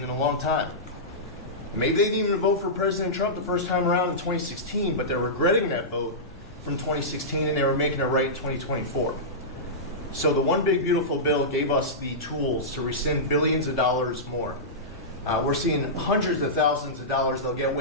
in a long time. Maybe they didn't even vote for President Trump the first time around in 2016, but they're regretting that vote from 2016, and they were making it right in 2024. So the One Big Beautiful Bill gave us the tools to rescind billions of dollars more. We're seeing hundreds of thousands of dollars that'll get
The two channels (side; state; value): both; normal; correlation -0.15